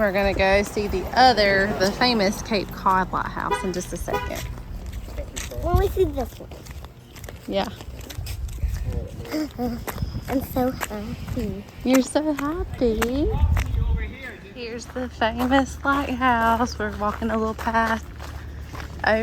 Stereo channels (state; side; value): identical; both; correlation 1.00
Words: gonna go see the famous Cape Cod Lighthouse in just a second. When we see this one. Yeah. I'm so happy. You're so happy. Here's the famous lighthouse. We're walking a little path